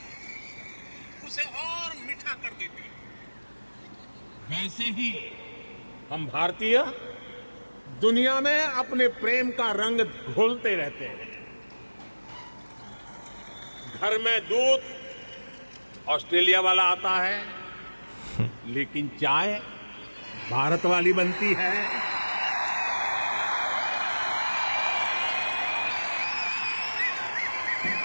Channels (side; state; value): both; inverted; correlation -1.00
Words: उसे और मीठा कर देती है। वैसे ही हम भारतीय दुनिया में अपने प्रेम का रंग घोलते रहते हैं। घर में दूध ऑस्ट्रेलिया वाला आता है, लेकिन चाय भारत वाली बनती है।